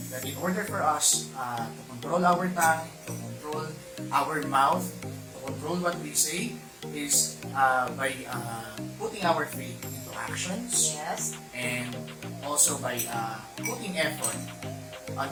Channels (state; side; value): identical; both; correlation 1.00